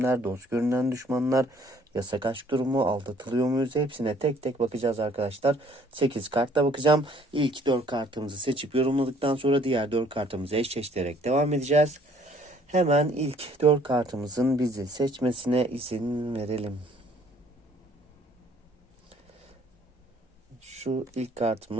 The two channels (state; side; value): normal; both; correlation 0.60